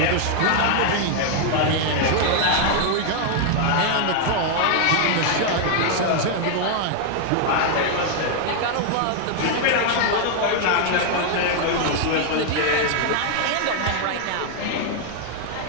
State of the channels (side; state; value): both; different; correlation 0.00